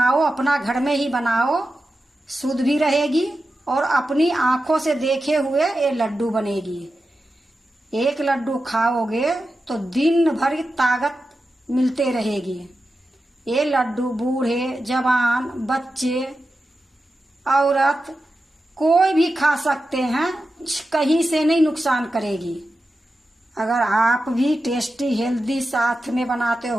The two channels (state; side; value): normal; both; correlation 0.91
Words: अपना घर में ही बनाओ, शुद्ध भी रहेगी और अपनी आंखों से देखे हुए ये लड्डू बनेगी। एक लड्डू खाओगे तो दिन भर ताकत मिलते रहेगी। ये लड्डू बूढ़े जवान बच्चे औरत कोई भी खा सकते हैं, कहीं से नहीं नुकसान करेगी। अगर आप भी टेस्टी हेल्दी साथ में बनाते